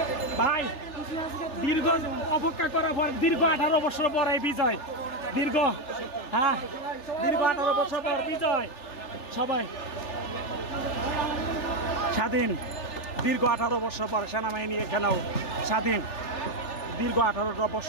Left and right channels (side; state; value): right; late; 3.4 ms